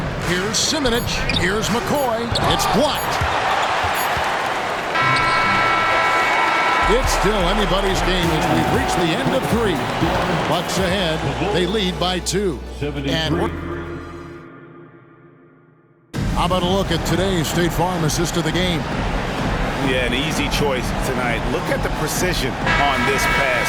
Here's Simonich. Here's McCoy. It's blocked. It's still anybody's game as we've reached the end of 3. Bucks ahead. They lead by 2. And how about a look at today's State Farm assist of the game? Yeah, an easy choice tonight. Look at the precision on this pass.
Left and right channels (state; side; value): identical; both; correlation 1.00